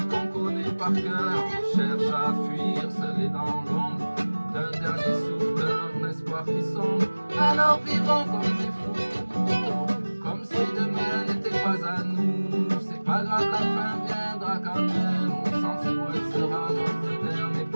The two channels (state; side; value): inverted; both; correlation -1.00